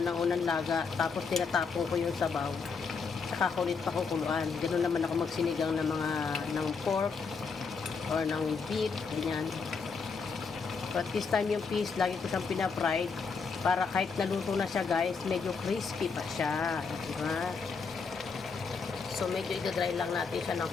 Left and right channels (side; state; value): right; quieter; 5.1 dB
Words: ng unang laga, tapos tinatapon ko yung sabaw. Saka kulit pa kukuluan. Ganun naman ako magsinigang ng pork or ng beef, ganyan. But this time yung fish, lagi ko siyang pinapried. Para kahit naluto na siya guys, medyo crispy pa siya. Diba? So medyo idadry lang natin siya ng